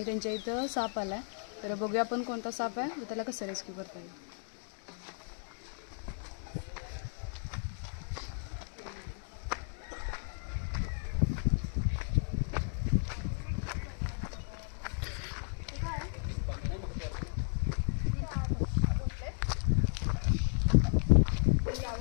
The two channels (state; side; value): silent; right; 55 dB below the other